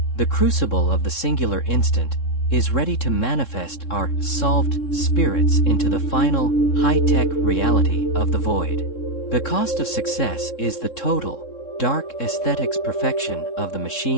The crucible of the singular instant is ready to manifest our solved spirits into the final high-tech reality of the void. The cost of success is the total, dark aesthetics perfection of the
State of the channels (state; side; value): late; right; 3.7 ms